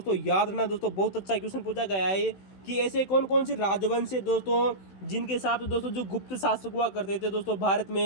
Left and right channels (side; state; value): right; late; 16 ms